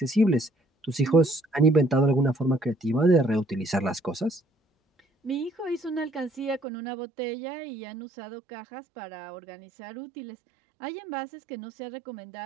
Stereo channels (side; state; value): left; drops out; at 6.6 s